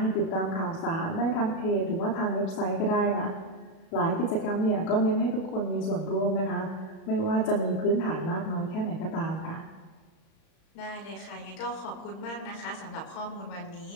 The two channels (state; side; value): late; right; 36 ms